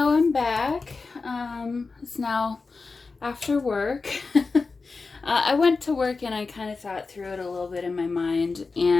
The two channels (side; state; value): right; quieter; 4.2 dB